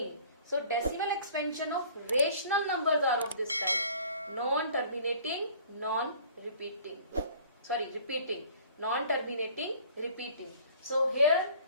So decimal expansion of rational numbers are of this type. Non-terminating, non-repeating. Sorry, repeating. Non-terminating, repeating. So here,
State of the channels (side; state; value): both; inverted; correlation -0.51